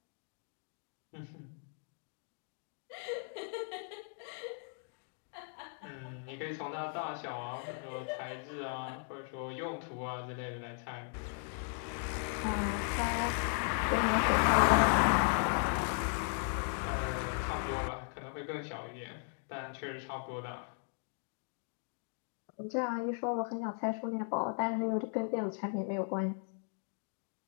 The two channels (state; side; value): silent; right; 53 dB below the other